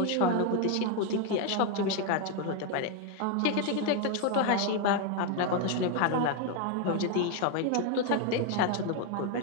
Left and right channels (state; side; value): different; both; correlation 0.01